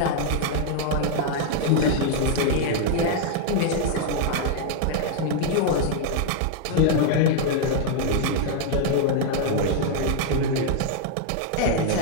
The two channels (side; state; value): both; different; correlation 0.00